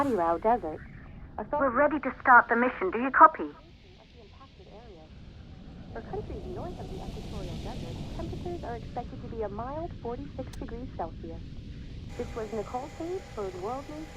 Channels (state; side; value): identical; both; correlation 1.00